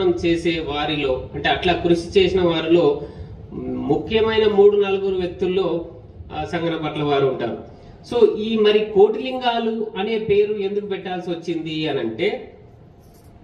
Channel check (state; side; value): identical; both; correlation 1.00